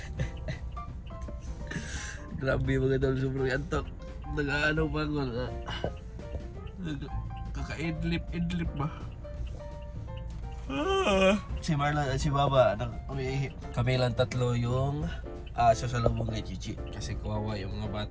Grabe mga tol, sobrang antok. Nag-ano pa ako. Kaka-idlip ba? Si Marlon at si Baba, kami lang tatlo yung sasalubong kay Chichi. Kasi kawawa yung mga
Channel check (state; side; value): identical; both; correlation 1.00